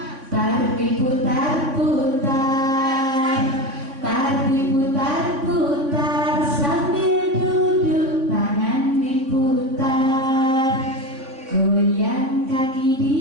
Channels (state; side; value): late; left; 3.6 ms